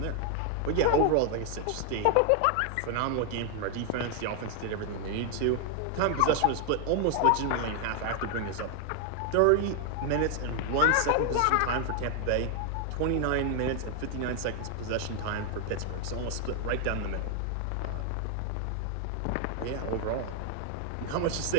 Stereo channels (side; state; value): both; different; correlation 0.00